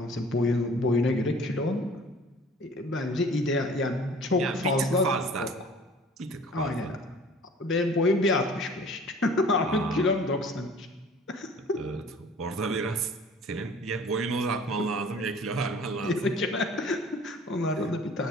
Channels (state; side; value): normal; both; correlation 0.48